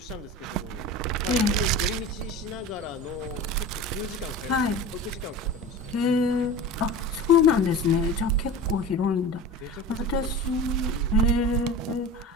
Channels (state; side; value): normal; both; correlation 0.33